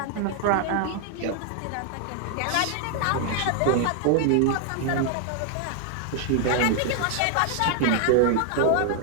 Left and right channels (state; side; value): different; both; correlation 0.00